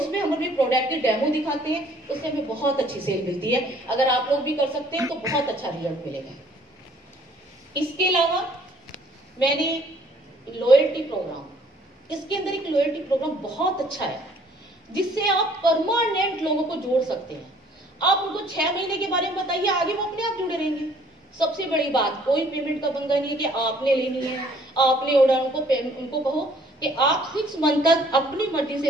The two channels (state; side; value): normal; both; correlation 0.59